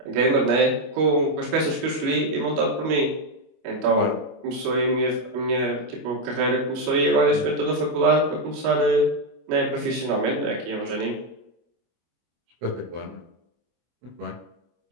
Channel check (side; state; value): left; late; 25 ms